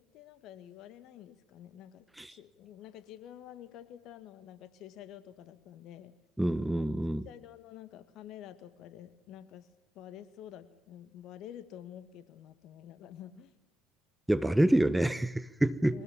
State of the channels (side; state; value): both; normal; correlation 0.96